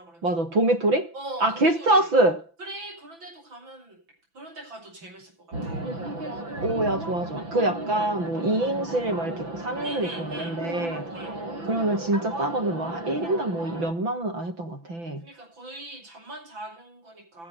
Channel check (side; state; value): left; late; 6.0 ms